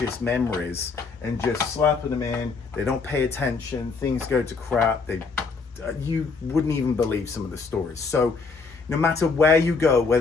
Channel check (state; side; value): quieter; right; 4.6 dB